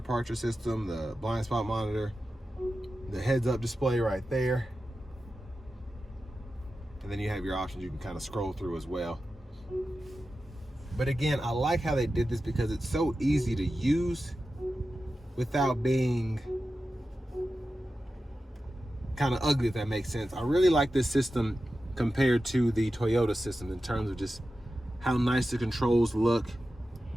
system, the blind spot monitor, the heads up display right there. And then you have your options you can kind of scroll through as well. But again, I like how they did this because it's so easy to use without being kind of ugly, if that makes sense. I really like this system compared to the Toyota system in terms of just how nice the controls look,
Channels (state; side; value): normal; both; correlation 0.93